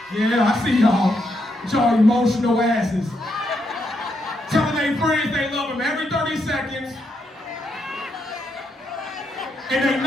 Yeah, I see y'all with y'all emotional asses. Telling their friends they love them every 30 seconds. And they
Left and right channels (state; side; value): normal; both; correlation 0.79